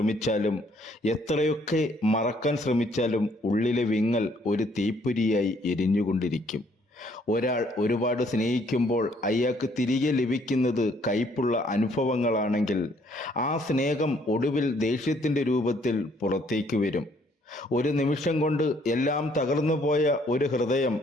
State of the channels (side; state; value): both; normal; correlation 0.65